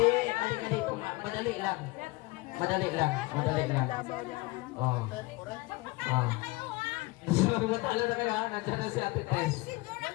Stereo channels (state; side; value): quieter; right; 23.0 dB